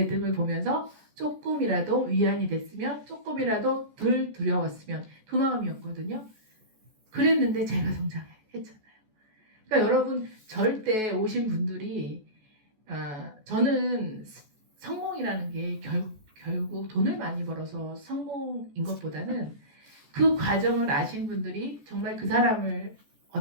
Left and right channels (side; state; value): left; late; 14 ms